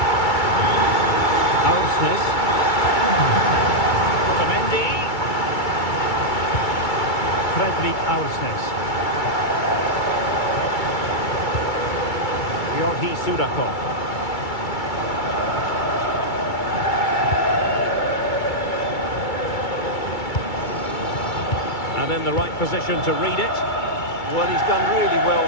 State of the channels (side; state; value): right; late; 2.3 ms